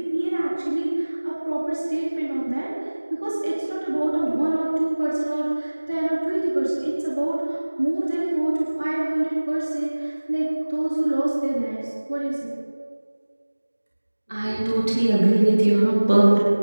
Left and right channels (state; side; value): inverted; both; correlation -1.00